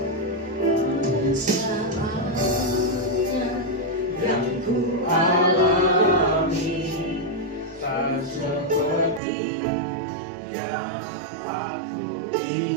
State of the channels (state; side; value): drops out; left; at 9.2 s